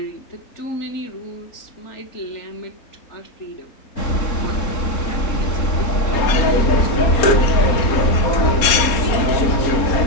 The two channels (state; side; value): late; right; 4.2 ms